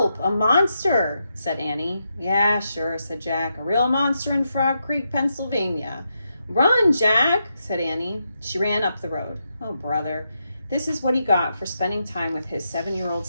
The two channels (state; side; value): inverted; both; correlation -0.84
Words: A monster!" said Annie. "Yeah, sure," said Jack. "A real monster in Frog Creek, Pennsylvania." "Run, Jack!" said Annie. She ran up the road. Oh, brother. This is what he got for spending time with his 7-year-old